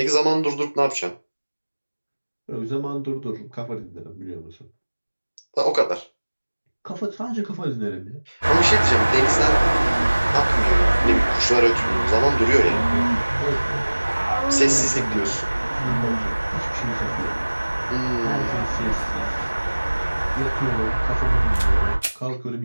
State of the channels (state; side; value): inverted; both; correlation -1.00